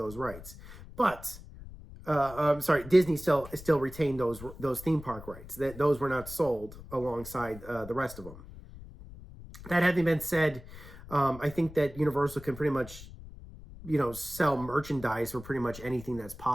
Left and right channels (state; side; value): noise; left; rumble, 16 dB below the sound